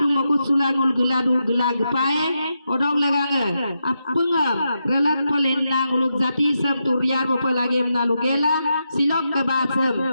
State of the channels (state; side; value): inverted; both; correlation -0.85